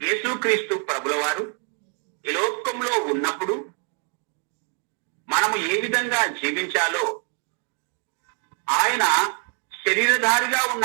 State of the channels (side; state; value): left; quieter; 37.4 dB